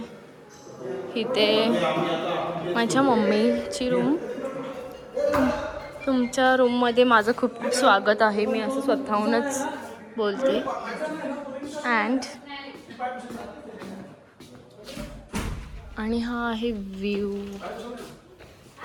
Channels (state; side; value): identical; both; correlation 1.00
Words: इथे माझ्या मम्मीची रूम. तुमच्या रूममध्ये माझं खूप खूप स्वागत आहे. मी असं स्वतःहूनच बोलते. आणि हा आहे व्ह्यू.